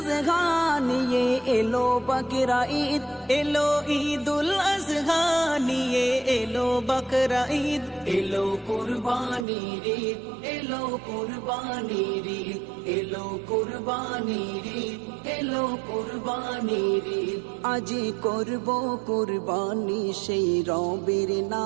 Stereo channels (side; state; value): left; drops out; at 9.5 s